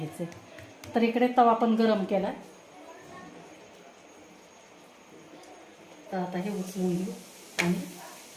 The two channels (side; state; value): both; identical; correlation 1.00